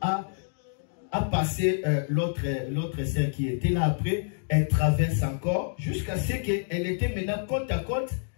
a passé l'autre sœur qui était là après. Elle traverse encore jusqu'à ce qu'elle était maintenant côte à côte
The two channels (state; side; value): silent; right; digital silence